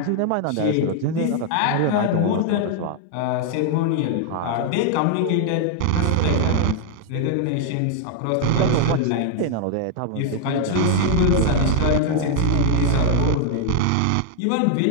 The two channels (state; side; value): different; both; correlation 0.00